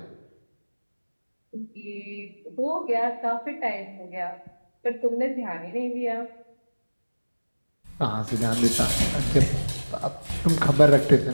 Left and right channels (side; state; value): both; inverted; correlation -1.00